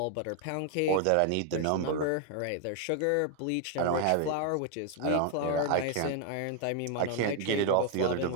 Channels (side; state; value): both; different; correlation 0.00